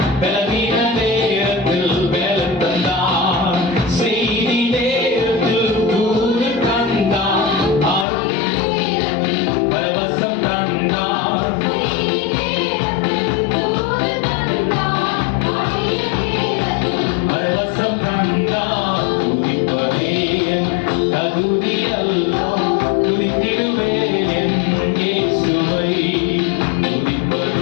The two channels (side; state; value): right; drops out; at 8.1 s